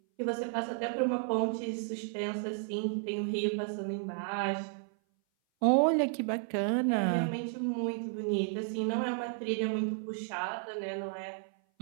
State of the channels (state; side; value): silent; left; 56 dB below the other